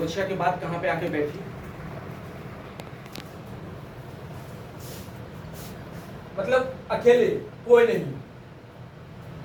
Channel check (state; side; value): identical; both; correlation 1.00